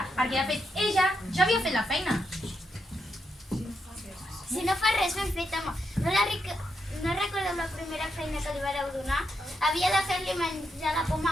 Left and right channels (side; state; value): both; normal; correlation 0.82